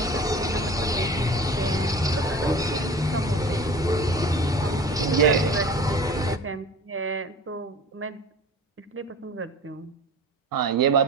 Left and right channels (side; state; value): both; normal; correlation 0.40